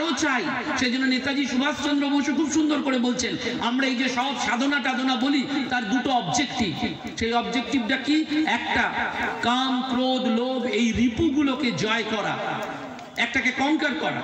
চাই। সেই জন্য নেতাজি সুভাষচন্দ্র বসু খুব সুন্দর করে বলছেন, আমরা এই যে সব সাধনা টাধনা বলি, তার দুটো অবজেক্টিভ। সেই অবজেক্টিভটা কি? একটা, কাম ক্রোধ লোভ এই রিপুগুলোকে জয় করা, একটাকে কনকার করা,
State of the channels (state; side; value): identical; both; correlation 1.00